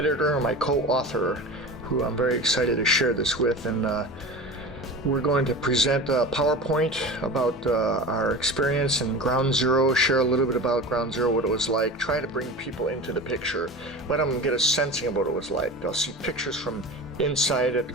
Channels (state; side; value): normal; both; correlation 0.32